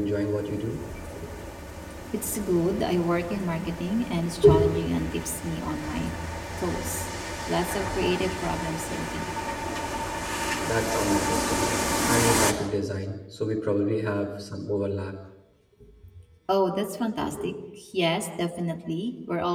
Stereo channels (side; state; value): both; identical; correlation 1.00